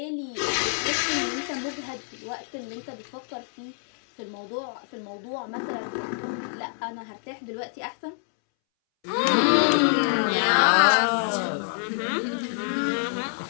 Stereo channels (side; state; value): right; silent; 61 dB below the other